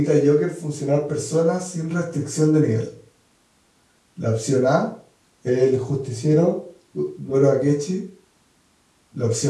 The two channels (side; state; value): both; identical; correlation 1.00